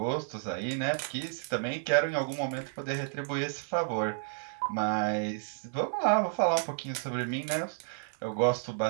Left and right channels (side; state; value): left; silent; 57 dB below the other